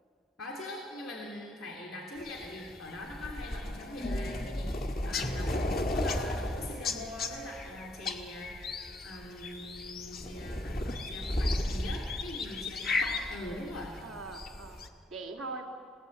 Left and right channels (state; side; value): normal; both; correlation 0.72